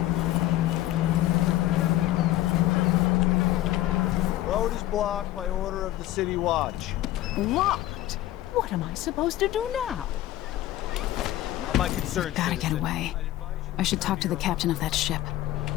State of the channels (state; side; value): quieter; right; 15.0 dB